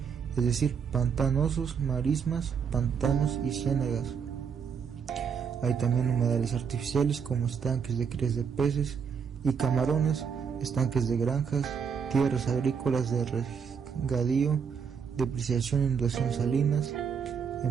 es decir, pantanosos, marismas, pantanos y ciénagas. Hay también humedales artificiales como estanques de crías de peces y camarones, estanques de granjas, tierras agrícolas de regadío, depreciación e inundación salinas,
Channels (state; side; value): quieter; left; 6.6 dB